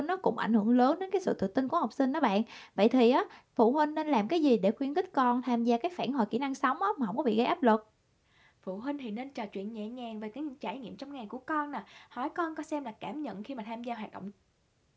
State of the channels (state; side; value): identical; both; correlation 1.00